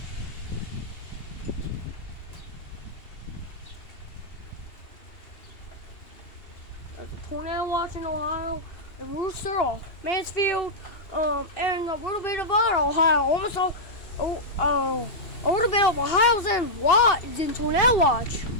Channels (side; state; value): right; late; 2.8 ms